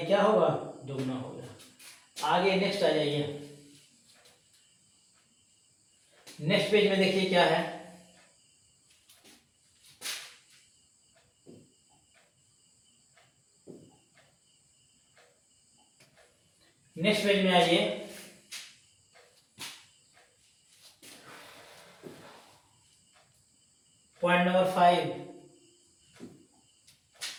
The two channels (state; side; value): identical; both; correlation 1.00